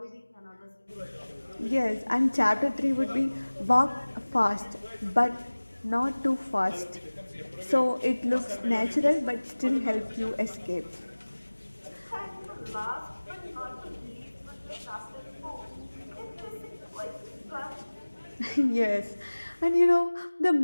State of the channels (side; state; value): both; inverted; correlation -1.00